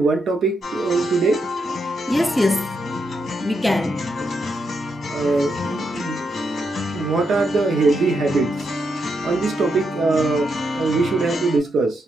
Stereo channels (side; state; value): both; normal; correlation 0.82